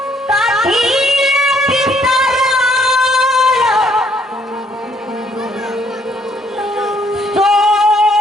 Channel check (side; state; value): both; normal; correlation 0.67